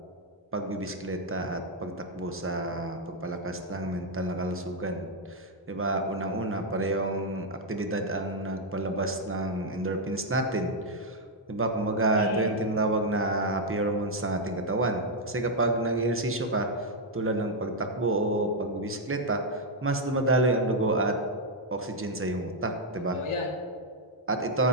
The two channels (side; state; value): both; normal; correlation -0.02